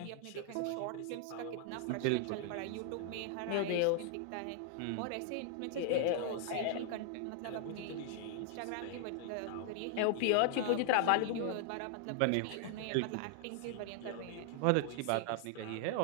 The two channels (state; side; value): different; both; correlation 0.00